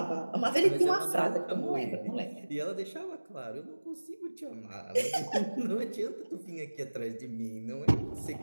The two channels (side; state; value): both; inverted; correlation -1.00